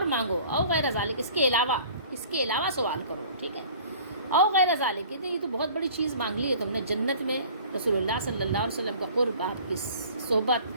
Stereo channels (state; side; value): inverted; both; correlation -0.48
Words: مانگو. او غیر ذالک، اس کے علاوہ سوال کرو. ٹھیک ہے. او غیر ذالک، یہ تو بہت بڑی چیز مانگ لی ہے تم نے، جنت میں رسول اللہ صلی اللہ علیہ وسلم کا قرب، آپ کی صحبت.